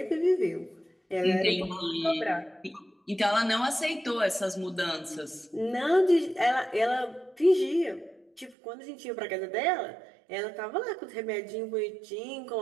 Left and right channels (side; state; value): left; drops out; at 8.6 s